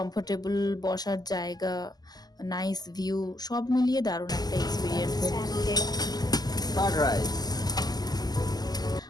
বসার জায়গা, নাইস ভিউ, সব মিলিয়ে দারুণ একটা এক্সপিরিয়েন্স। Curd rice.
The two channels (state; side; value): late; right; 0.20 ms